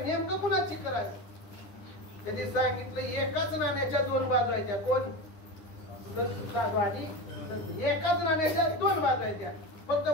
नेमकं कुणाची करावी? त्यांनी सांगितलं एकाच नाण्याच्या दोन बाजू आहेत. त्या कोण? साधू आणि संत. एकाच नाण्याच्या दोन बाजू आहेत. त्या फक्त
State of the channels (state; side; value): late; right; 9.9 ms